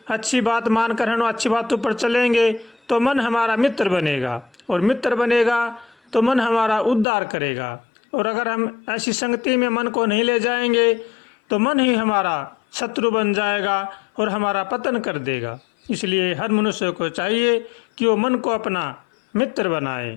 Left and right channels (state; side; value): drops out; right; at 7.1 s